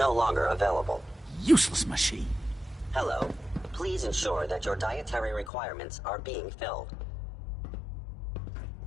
longer available. Useless machine. Hello. Please ensure that your dietary requirements are being filled.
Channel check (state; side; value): drops out; right; at 5.5 s